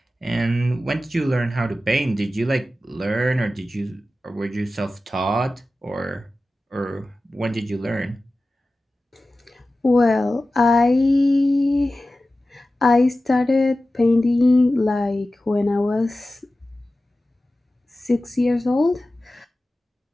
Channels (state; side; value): normal; both; correlation 0.95